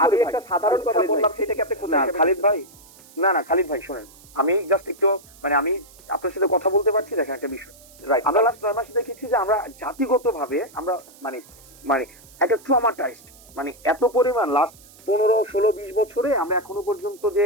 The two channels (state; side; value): noise; right; hiss, 23 dB below the sound